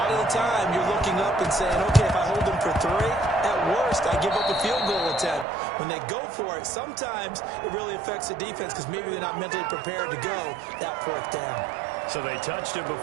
of the time, you're looking up and saying, okay, if I hold them for 3, at worst, I give up a field goal attempt. When they go for it, sometimes it really affects the defense because maybe they're not mentally prepared to go that 4th down. So they touched it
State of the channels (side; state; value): left; drops out; at 5.5 s